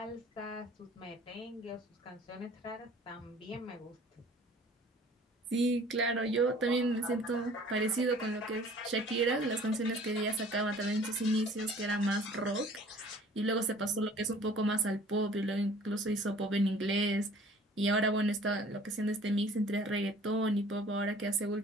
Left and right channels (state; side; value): normal; both; correlation 0.51